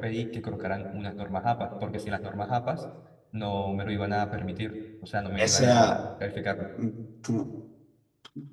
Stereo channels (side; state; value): both; identical; correlation 1.00